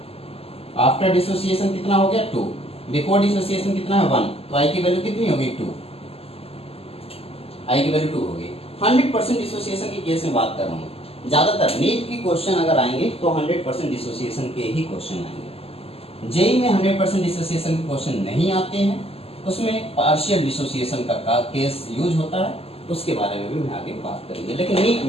आफ्टर डिसोसिएशन कितना हो गया? 2। बिफोर डिसोसिएशन कितना है? 1। तो आई की वैल्यू कितनी होगी? 2। आई की वैल्यू 2 होगी। 100% डिसोसिएशन के केस में बात कर रहा हूँ। ज्यादातर नीट की क्वेश्चन अगर आएंगे तो 100% डिसोसिएशन के ही क्वेश्चन आएंगे। जेई में 100% डिसोसिएशन के क्वेश्चन नहीं आते हैं, उसमें पार्शियल डिसोसिएशन का केस यूज होता है, उसके बारे में भी मैं आगे बात करेंगे। लेकिन नीट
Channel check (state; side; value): late; right; 0.29 ms